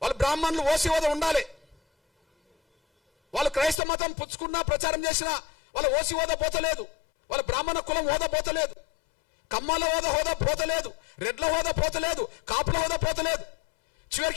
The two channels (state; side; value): drops out; right; at 3.8 s